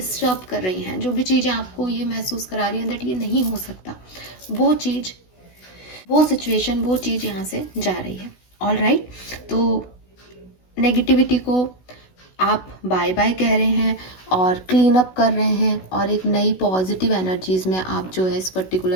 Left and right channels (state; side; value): late; right; 16 ms